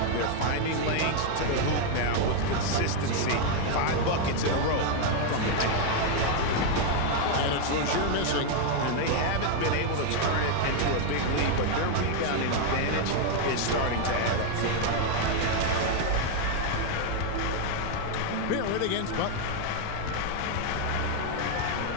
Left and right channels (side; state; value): both; different; correlation 0.01